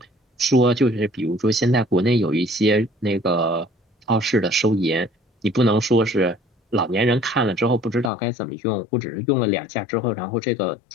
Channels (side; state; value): right; drops out; at 8.1 s